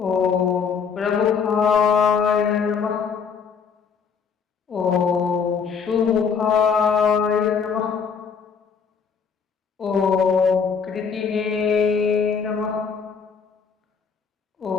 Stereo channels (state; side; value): quieter; right; 6.2 dB